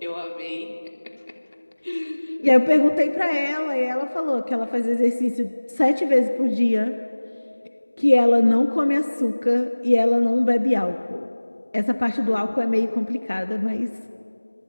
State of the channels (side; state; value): both; inverted; correlation -1.00